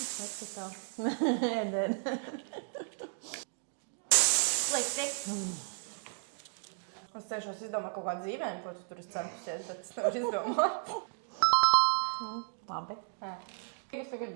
Slikti. Es cenšos izdomāt kaut kādu dzīvējumu, ko tu tur esi centusies, bet es nevaru izdomāt. Labi. Es tagad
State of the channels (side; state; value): left; silent; 55 dB below the other